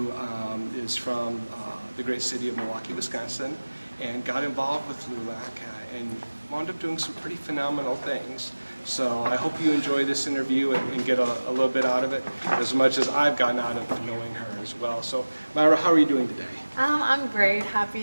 is from the great city of Milwaukee, Wisconsin, and got involved with LULAC and wound up doing some pretty phenomenal things. So I hope you enjoy this interview and get a little bit out of it, as much as I've gotten out of knowing her as well. So Mayra, how are you doing today? I'm great.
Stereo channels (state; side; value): inverted; both; correlation -1.00